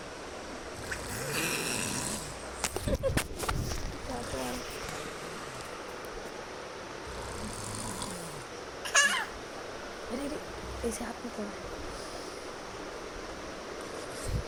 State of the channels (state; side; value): identical; both; correlation 1.00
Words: अरे अरे ऐसे हाथ में पड़ा.